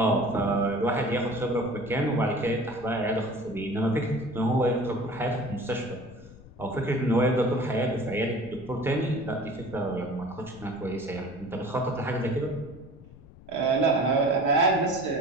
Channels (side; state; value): left; noise; rumble, 20 dB below the sound